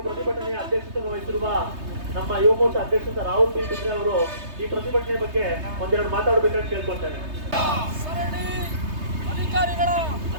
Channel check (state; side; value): late; left; 3.3 ms